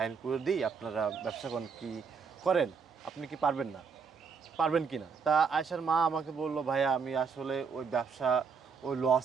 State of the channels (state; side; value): quieter; left; 5.7 dB